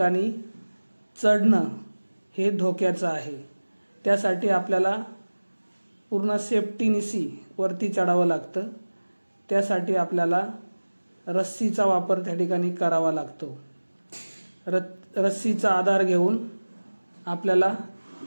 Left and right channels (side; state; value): both; inverted; correlation -1.00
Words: चढणं हे धोक्याचं आहे. त्यासाठी आपल्याला पूर्ण सेफ्टीनिशी वरती चढावं लागतं. त्यासाठी आपल्याला रस्सीचा वापर त्या ठिकाणी करावा लागतो. रस्सीचा आधार घेऊन आपल्याला